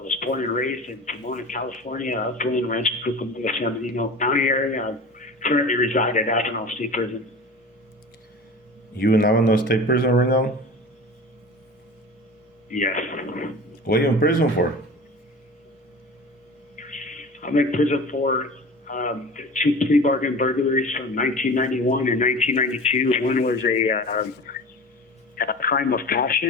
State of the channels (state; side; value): normal; both; correlation 0.36